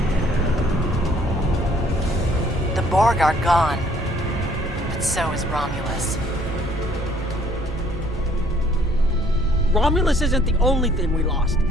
The Borg are gone, but so is Romulus. Romulus isn't the only thing we lost.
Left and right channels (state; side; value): normal; both; correlation 0.61